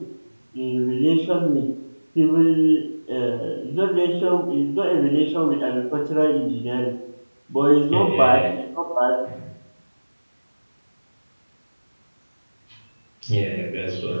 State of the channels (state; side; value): inverted; both; correlation -1.00